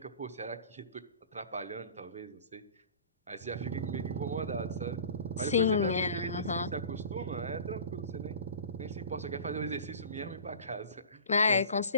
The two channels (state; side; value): inverted; both; correlation -0.41